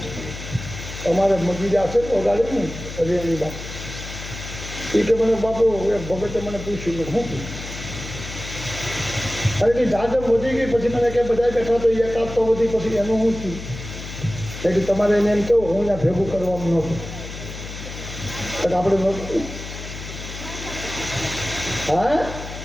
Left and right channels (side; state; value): left; noise; hum, 10 dB below the sound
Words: અમારે મગીજા છે વગાડે ને હરિયાણી બાપ એ કે મને બાપુ એક ભગતે મને પૂછ્યું કે હું અરે કે જાજમ વધી ગઈ પછી મને કે બધા બેઠા તો એકાદ તો વધી પછી એનું હું થયું એટલે તમારે એને એમ કેવું હું ત્યાં ભેગું કરવાનું નહોતું આપણે નહોતું. હા